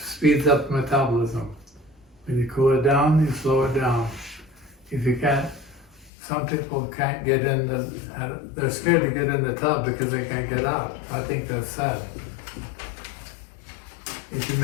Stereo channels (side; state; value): right; drops out; at 6.1 s